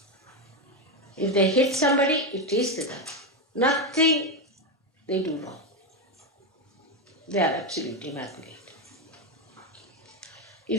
If they hit somebody, it is the dharma. Nothing they do wrong. They are absolutely immaculate.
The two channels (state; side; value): normal; both; correlation 0.10